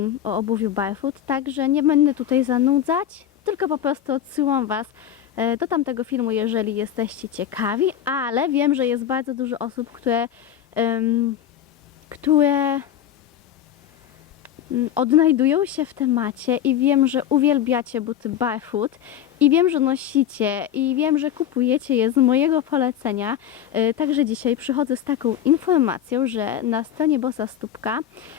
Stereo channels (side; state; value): right; quieter; 10.3 dB